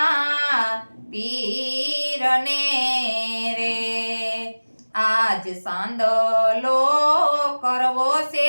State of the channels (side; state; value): both; inverted; correlation -1.00